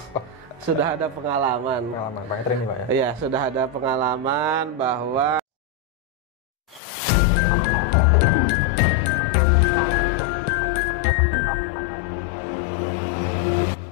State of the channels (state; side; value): drops out; right; at 6.8 s